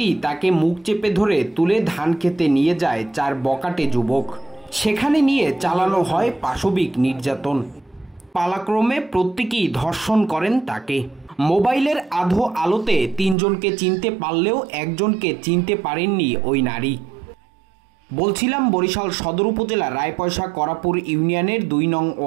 তাকে মুখ চেপে ধরে তুলে ধান খেতে নিয়ে যায় 4 বকাটে যুবক। সেখানে নিয়ে চালানো হয় পাশবিক নির্যাতন। পালাক্রমে প্রত্যেকেই ধর্ষণ করেন তাকে। মোবাইলের আধো আলোতে 3 জনকে চিনতে পারলেও একজনকে চিনতে পারেননি ওই নারী। বলছিলাম বরিশাল সদর উপজেলা রায়পয়সা করাপুর ইউনিয়নের 2 নং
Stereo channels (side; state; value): left; drops out; at 13.4 s